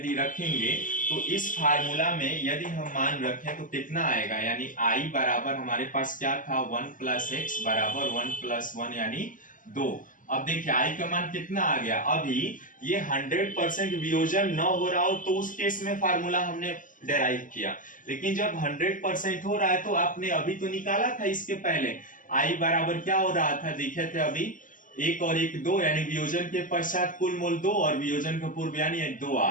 रखेंगे तो इस फार्मूला में यदि हम मान रखें तो कितना आएगा, यानी I बराबर हमारे पास क्या था, 1 प्लस एक्स बराबर 1 प्लस 1 यानी 2। अब देखिए I का मान कितना आ गया, अभी ये 100% वियोजन न हो रहा हो तो उस केस में फार्मूला हमने डेराइव किया, लेकिन जब 100% हो रहा है तो आपने अभी तो निकाला था इसके पहले, I बराबर क्या हो रहा था, देखे थे अभी 1 और 1 2, यानी वियोजन के पश्चात कुल मोल 2 और वियोजन के पूर्व यानी 2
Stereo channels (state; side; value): late; right; 0.38 ms